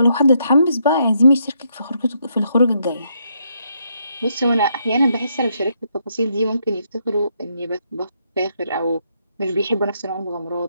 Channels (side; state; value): both; inverted; correlation -0.76